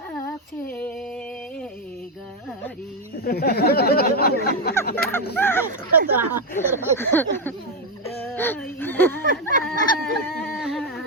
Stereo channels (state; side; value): normal; both; correlation 0.06